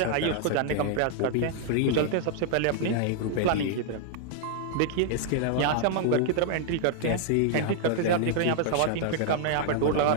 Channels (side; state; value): both; different; correlation 0.00